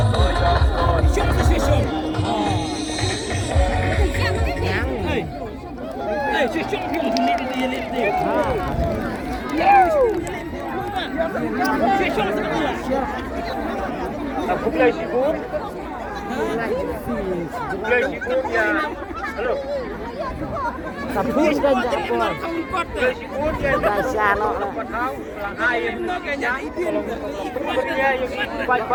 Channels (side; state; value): both; identical; correlation 1.00